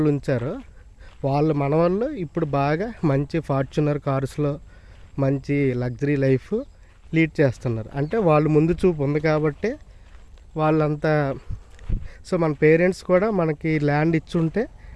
ఉంచారో మన వాళ్ళు ఇప్పుడు బాగా మంచి ఫార్చునర్ కార్స్లో మంచి లగ్జరీ లైఫ్ లీడ్ చేస్తున్నారు. అంటే వాళ్ళు ముందు చూపు ఉంది కాబట్టి వాళ్ళంతా. సో మన పేరెంట్స్ కూడా మనకి ల్యాండ్ ఇచ్చుంటే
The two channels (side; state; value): both; identical; correlation 1.00